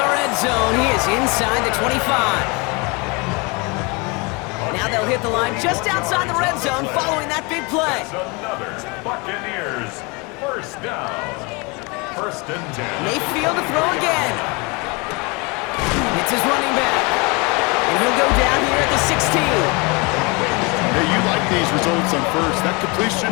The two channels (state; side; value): quieter; right; 28.6 dB